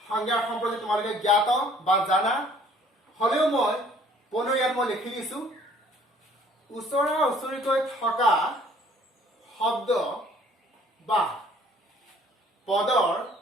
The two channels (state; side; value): normal; both; correlation 0.57